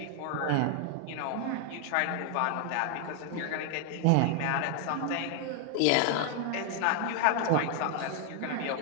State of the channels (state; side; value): different; both; correlation 0.00